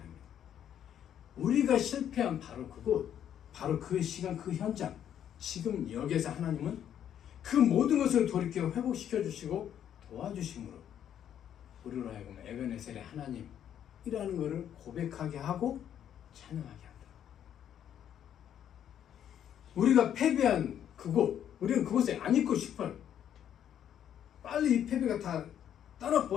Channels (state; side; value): quieter; right; 9.8 dB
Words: 우리가 실패한 바로 그곳, 바로 그 시간, 그 현장, 지금 여기에서 하나님은 그 모든 것을 돌이켜 회복시켜 주시고 도와주심으로 우리로 하여금 에벤에셀의 하나님이라는 것을 고백하게 하고 찬양하게 한다. 우리가 패배한 그곳, 우리는 그곳에 안 있고 싶어요. 빨리 이 패배가 다